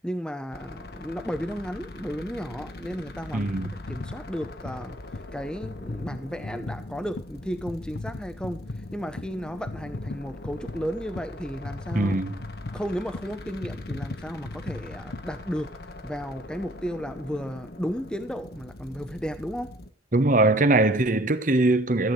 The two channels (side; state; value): both; normal; correlation 0.61